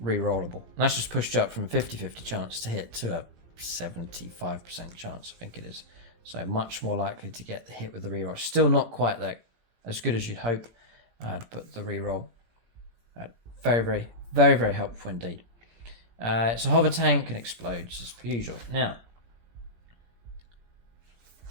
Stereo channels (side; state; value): left; late; 17 ms